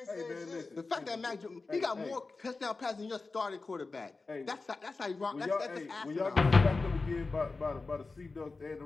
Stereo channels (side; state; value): right; quieter; 3.8 dB